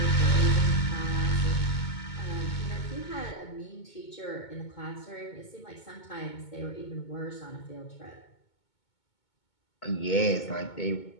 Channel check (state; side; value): late; right; 2.2 ms